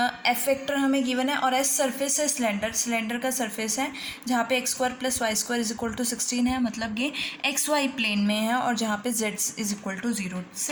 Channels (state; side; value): identical; both; correlation 1.00